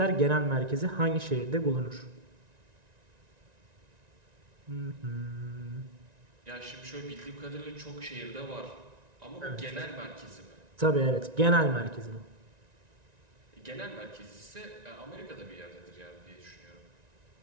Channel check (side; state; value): left; late; 1.9 ms